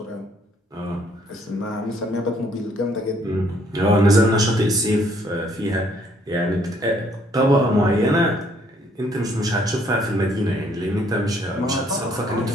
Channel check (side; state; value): both; normal; correlation 0.65